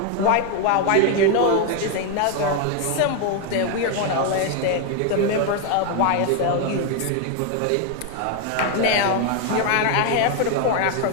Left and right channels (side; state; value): both; different; correlation 0.01